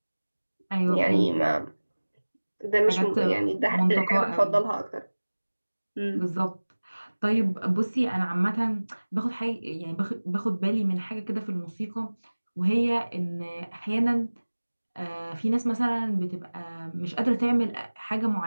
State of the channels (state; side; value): inverted; both; correlation -1.00